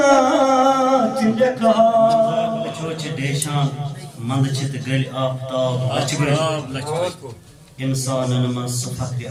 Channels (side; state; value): both; identical; correlation 1.00